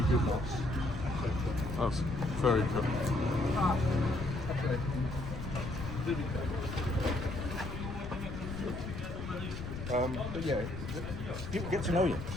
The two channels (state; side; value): noise; left; rumble, 8 dB below the sound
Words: good nuts. That's very cool. But yeah, people get to know you,